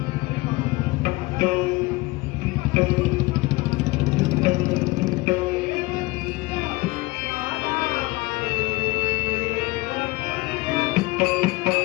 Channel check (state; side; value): quieter; right; 22.0 dB